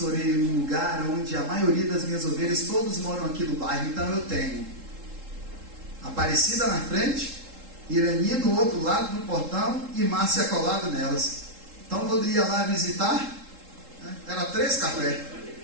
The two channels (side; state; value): left; late; 3.7 ms